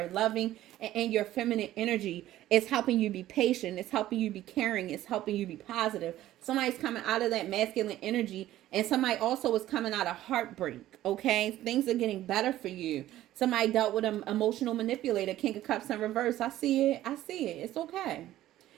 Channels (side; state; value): left; quieter; 14.1 dB